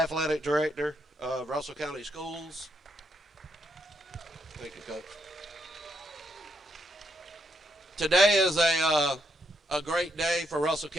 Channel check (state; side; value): normal; both; correlation 0.77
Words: director of Russell County Schools. Thank you, Coach. Today is a great day for Russell